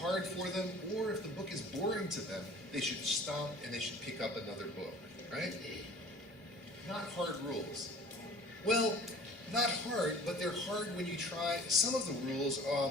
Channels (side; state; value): both; normal; correlation 0.46